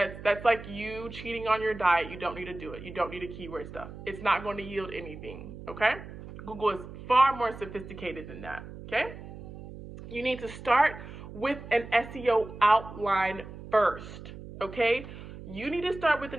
like you cheating on your diet. You don't need to do it. You don't need to keyword stuff. It's not going to yield anything, okay? Google is far more sophisticated than that, okay? You need to start with an SEO outline first, okay? You need to start with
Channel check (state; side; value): noise; right; hum, 13 dB below the sound